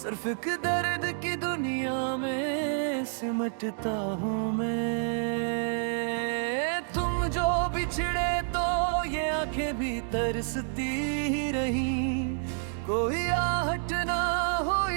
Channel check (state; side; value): silent; left; 59 dB below the other